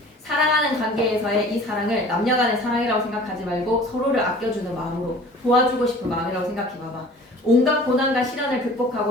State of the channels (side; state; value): both; normal; correlation 0.46